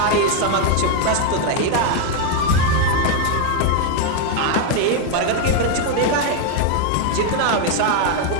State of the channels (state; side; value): different; both; correlation 0.01